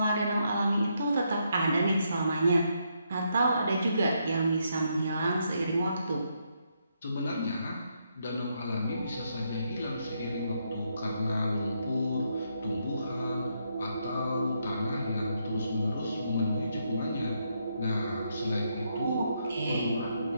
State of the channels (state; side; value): inverted; both; correlation -0.78